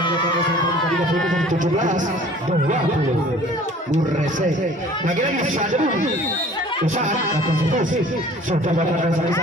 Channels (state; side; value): normal; both; correlation 0.49